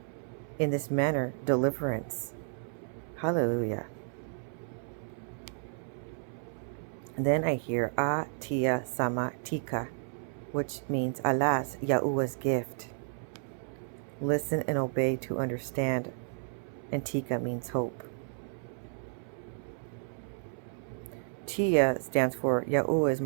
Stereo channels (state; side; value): silent; left; 56 dB below the other